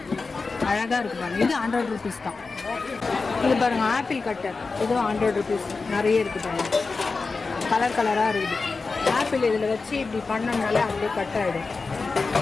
அழகாக இருக்குது பாருங்கள். இது 100 rupees தான். இது பாருங்கள் ஆப்பிள் கட்டர். இதுவும் 100 rupees. நிறைய இருக்குது பாருங்கள். கலர் கலராக இருக்குது. ஆப்பிள் இதில் வச்சு இப்படி பண்ணோம்னாலே அப்படியே கட் ஆகிடும்.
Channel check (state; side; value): quieter; right; 4.2 dB